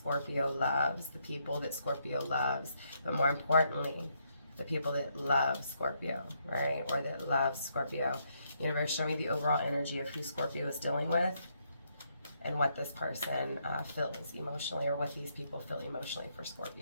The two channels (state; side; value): inverted; both; correlation -0.75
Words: loves, the people that Scorpio loves, but more importantly, the people that love Scorpio, right? Or that love Scorpio. Universe, show me the overall energy of who Scorpio is dealing with and what this person feels emotionally, or what these people feel emotionally for